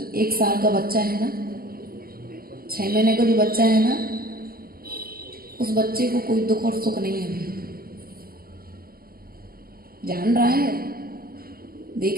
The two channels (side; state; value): left; late; 0.43 ms